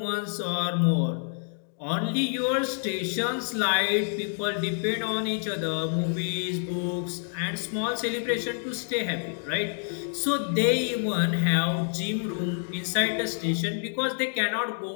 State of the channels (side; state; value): right; silent; 60 dB below the other